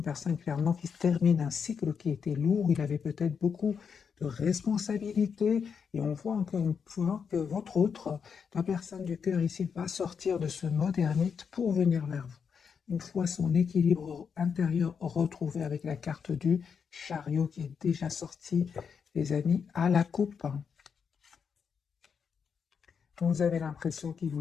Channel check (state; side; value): quieter; right; 6.5 dB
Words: personne clairement qui termine un cycle qui était lourd. Il avait peut-être beaucoup de responsabilités. Et on voit encore une fois que votre autre, la personne du cœur ici, va sortir de ce mode ermite pour venir vers vous. Une fois son équilibre intérieur retrouvé avec la carte du chariot qui est déjà sortie, les amis, à la coupe. Vous avez l'impression qu'il